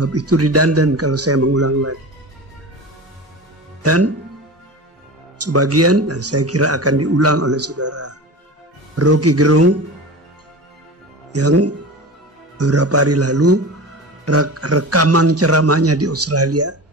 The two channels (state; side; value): normal; both; correlation 0.31